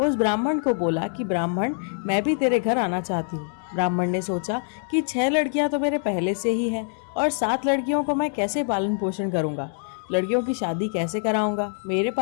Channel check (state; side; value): silent; right; 57 dB below the other